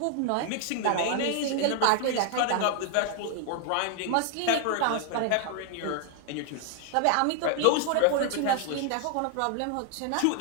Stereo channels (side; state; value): both; different; correlation 0.00